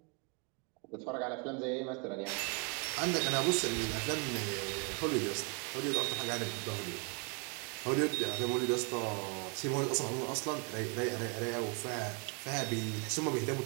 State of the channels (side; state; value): left; quieter; 33.9 dB